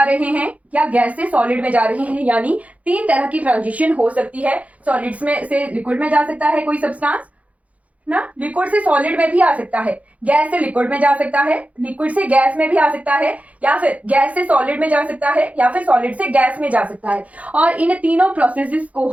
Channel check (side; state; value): left; late; 0.068 ms